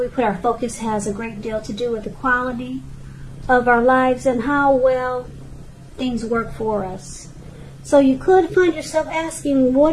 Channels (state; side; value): identical; both; correlation 1.00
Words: put our focus has a great deal to do with the quality of our lives and how well things work for us. So you could find yourself asking,